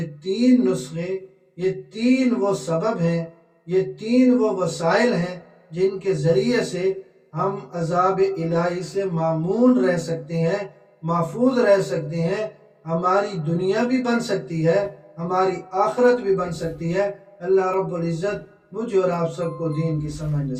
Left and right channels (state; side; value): identical; both; correlation 1.00